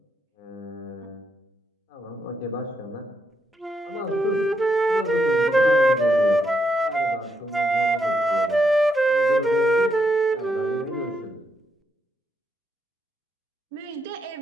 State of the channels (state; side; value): normal; both; correlation 0.79